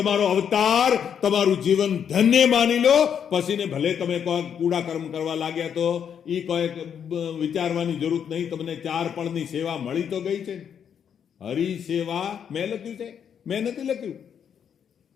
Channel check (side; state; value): right; quieter; 8.1 dB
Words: અવતાર, તમારું જીવન ધન્ય માની લો. પછીને ભલે તમે કોઈ કૂડા કર્મ કરવા લાગ્યા તો એ કોઈ વિચારવાની જરૂર નહીં, તમને 4 પળની સેવા મળી તો ગઈ છે. હરિ સેવા મેં લખ્યું છે, મેં નથી લખ્યું.